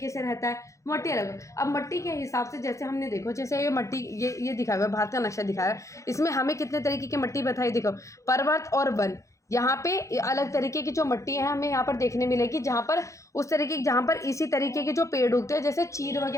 से रहता है, मिट्टी अलग। अब मिट्टी के हिसाब से जैसे हमने देखो, जैसे ये मिट्टी ये दिखाया हुआ है, भारत का नक्शा दिखाया है, इसमें हमें कितने तरीके की मिट्टी बताई, देखो पर्वत और वन, यहाँ पे अलग तरीके की जो मिट्टी है हमें यहाँ पर देखने मिलेगी, जहाँ पर उस तरीके जहाँ पर इसी तरीके के जो पेड़ उगते हैं, जैसे चीड़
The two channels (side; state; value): right; late; 0.15 ms